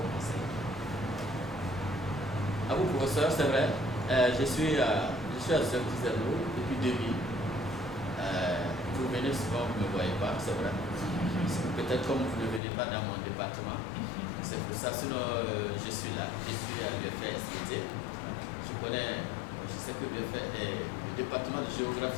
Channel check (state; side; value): drops out; right; at 12.6 s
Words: conseils. À vous professeur, c'est vrai, je suis à Zerno depuis 2000. Vous venez souvent, vous ne me voyez pas, c'est vrai. Peut-être comme vous ne venez pas dans mon département, c'est pour ça, sinon je suis là. Je suis à l'UFR SVT. Je sais que le département de